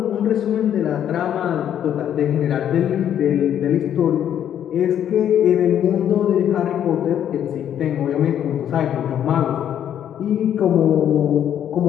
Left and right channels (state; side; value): quieter; right; 10.0 dB